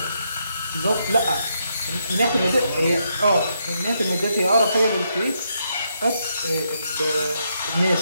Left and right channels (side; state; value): both; inverted; correlation -0.78